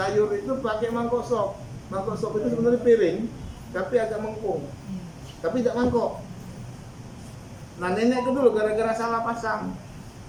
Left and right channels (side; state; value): both; identical; correlation 1.00